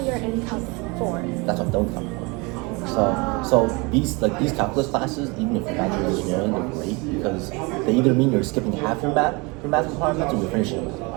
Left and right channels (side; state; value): left; quieter; 27.5 dB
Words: in Calc 4. That's what I'm done with Calc 4. So these calculus classes, even if you're not doing engineering, they're great because they either mean you're skipping half your math requirements or you're finishing with.